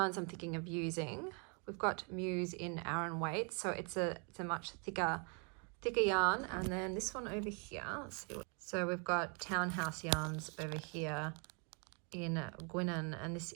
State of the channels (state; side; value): quieter; left; 36.3 dB